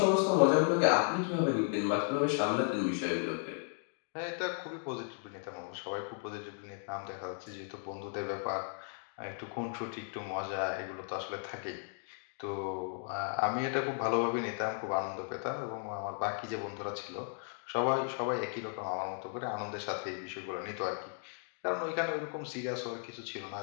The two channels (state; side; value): silent; right; 54 dB below the other